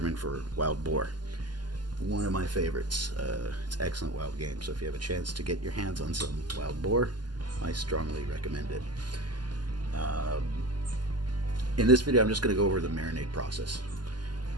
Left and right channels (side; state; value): left; late; 0.71 ms